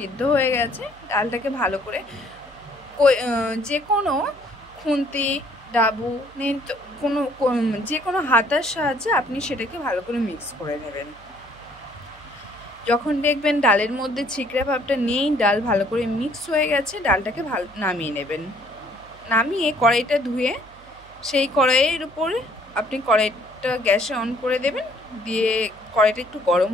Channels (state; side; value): noise; right; hum, 24 dB below the sound